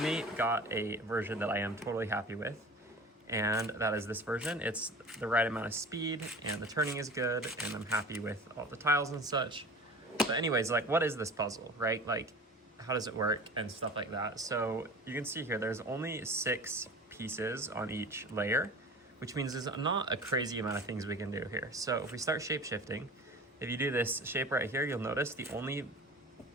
got a version that I am totally happy with. And that is this version. It's the right amount of speed and the turning is good, and I'm happy with all the tiles and such. But anyways, like, what is this puzzle, right? Like, how does it work and stuff like that? So you can see here, there's only 6 pieces on each layer, which means there's not a crazy amount of things we can do here. So if we start shape shifting, if you do this shape right here, you'll notice the only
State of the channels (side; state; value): both; normal; correlation 0.38